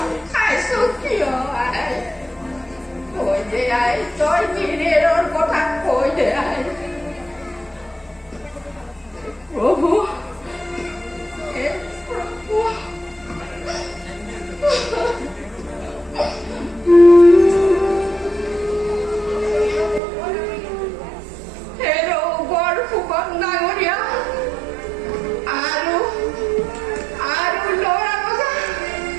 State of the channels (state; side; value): drops out; left; at 20.0 s